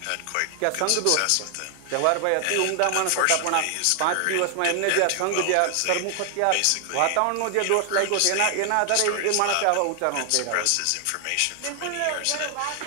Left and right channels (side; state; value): both; different; correlation 0.00